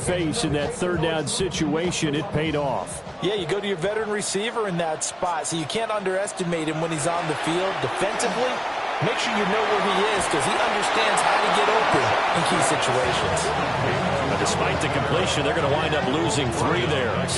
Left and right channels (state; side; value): identical; both; correlation 1.00